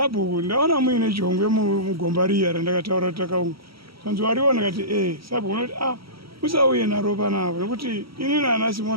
ndaona muine jongwe mugomba riya randakataura takaunga. Zvanzi wariona kati Sabhuku unoti usauye naro panapa nekuti ini nana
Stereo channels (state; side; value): late; left; 0.75 ms